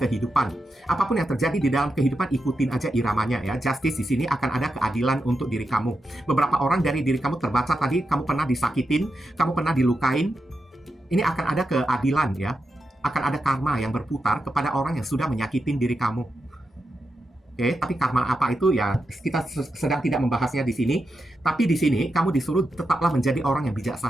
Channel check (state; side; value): normal; both; correlation 0.87